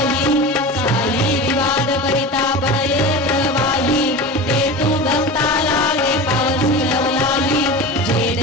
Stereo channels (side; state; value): both; normal; correlation 0.30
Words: साई विवाद करिता पडये प्रवाही ते तू भक्ता लागे पावसी लवलाही जय